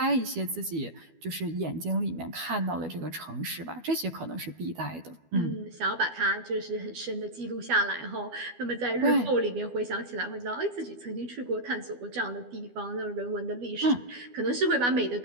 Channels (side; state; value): left; late; 12 ms